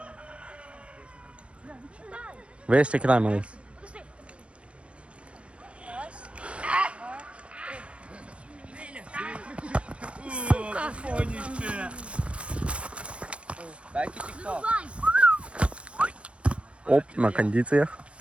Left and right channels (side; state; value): left; late; 0.060 ms